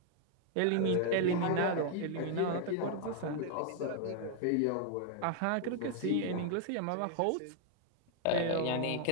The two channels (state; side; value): different; both; correlation 0.00